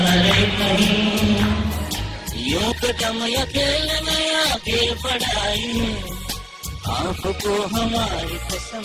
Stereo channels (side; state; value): both; identical; correlation 1.00